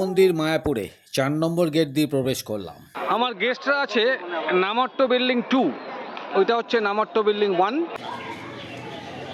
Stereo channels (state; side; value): identical; both; correlation 1.00